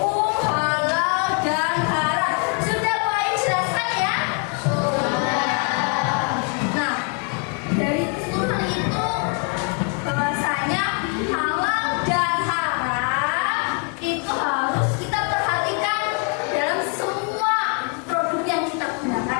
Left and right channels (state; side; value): quieter; right; 38.3 dB